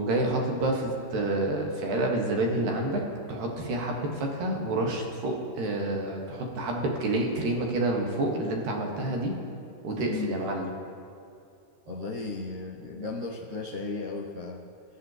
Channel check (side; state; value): left; late; 13 ms